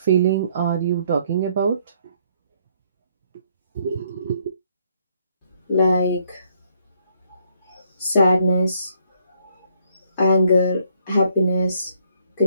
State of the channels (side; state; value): both; inverted; correlation -0.67